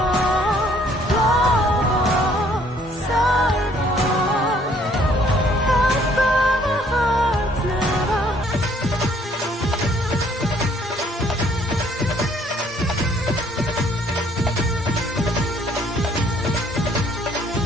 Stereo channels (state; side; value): normal; both; correlation 0.62